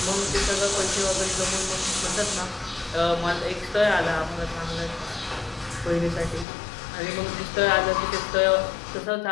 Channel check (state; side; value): drops out; right; at 6.5 s